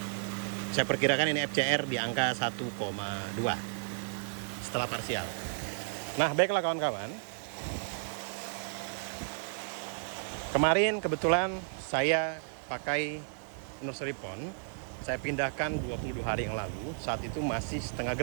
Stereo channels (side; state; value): left; silent; digital silence